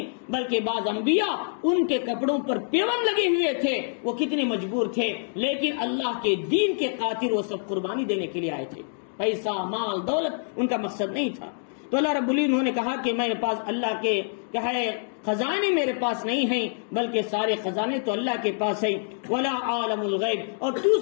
بلکہ بعض انبیاء ان کے کپڑوں پر پیوند لگے ہوئے تھے، وہ کتنے مجبور تھے، لیکن اللہ کے دین کے خاطر وہ سب قربانی دینے کے لیے آئے تھے، پیسہ، مال، دولت ان کا مقصد نہیں تھا۔ تو اللہ رب العزت نے کہا کہ میرے پاس اللہ کے کیا ہے خزانے میرے پاس نہیں ہیں، بلکہ سارے خزانے تو اللہ کے پاس ہیں۔ ولا عالم الغیب، اور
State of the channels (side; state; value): right; silent; digital silence